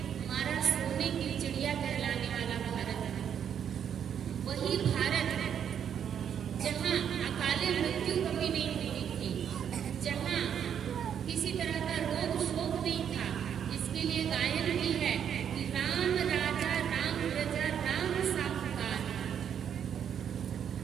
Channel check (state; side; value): quieter; left; 8.5 dB